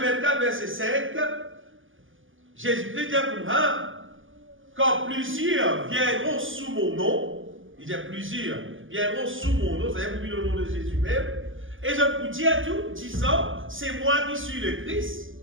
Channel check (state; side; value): late; left; 0.58 ms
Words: verset 5, Jésus-Christ dit pour quand plusieurs viendront sous mon nom, il dit plusieurs viendront sous mon nom, c'est-à-dire pour le nom de Jésus même, et je vous dis à tout, disant, c'est moi qui suis le Christ.